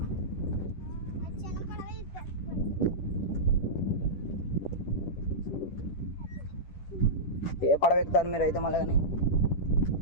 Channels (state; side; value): late; right; 10 ms